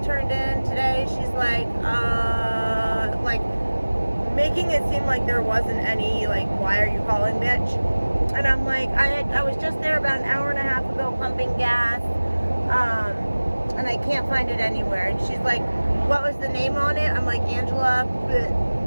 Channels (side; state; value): both; inverted; correlation -1.00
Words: turned in today. She's like, making it seem like there wasn't any, like, why are you calling, bitch? And I'm like, I was just there about an hour and a half ago pumping gas, and I can't find it anywhere. And she's like, what was the name on it? I'm like, Angela,